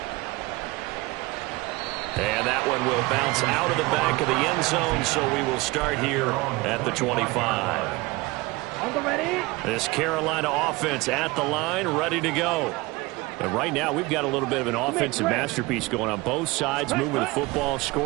And that one will bounce out of the back of the end zone, so we will start here at the 25. This Carolina offense at the line, ready to go. And right now, we've got a little bit of an offensive masterpiece going on both sides, moving the football,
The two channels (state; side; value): quieter; left; 22.3 dB